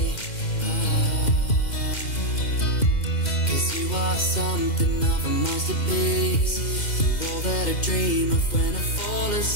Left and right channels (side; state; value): right; late; 2.1 ms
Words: Cause you are something of a masterpiece. All that I dream of when I fall